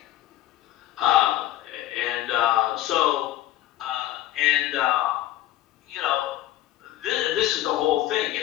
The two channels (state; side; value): quieter; right; 14.5 dB